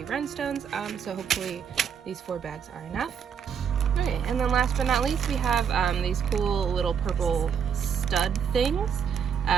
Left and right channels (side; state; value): left; quieter; 7.4 dB